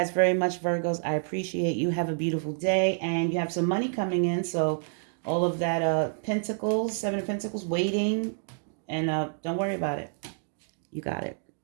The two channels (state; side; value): silent; left; digital silence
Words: very much, Virgos. I appreciate you. Have a beautiful day, and you have some money coming in, so all of that pentacles, 7 of Pentacles, waiting, and don't worry about it. You got it.